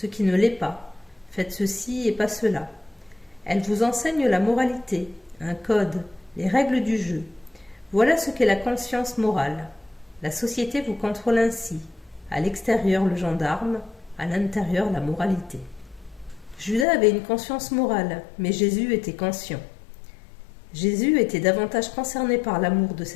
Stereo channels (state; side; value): drops out; right; at 16.9 s